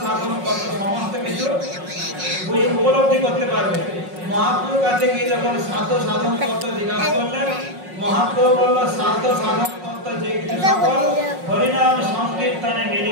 সাধন তত্ত্ব সমস্ত কিছু উপলব্ধি করতে পারবে। মহাপ্রভুর কাছে গিয়ে যখন সাধ্য সাধন তত্ত্ব জিজ্ঞাসা করলেন, মহাপ্রভু বলল সাধ্য সাধন তত্ত্ব যে কিছু সকল হরিনাম সংকীর্তনে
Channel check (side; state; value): left; late; 5.5 ms